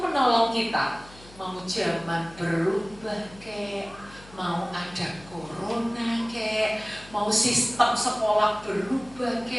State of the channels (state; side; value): noise; left; hum, 21 dB below the sound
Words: kita. Mau zaman berubah kek, mau ada corona kek, mau sistem sekolah berubah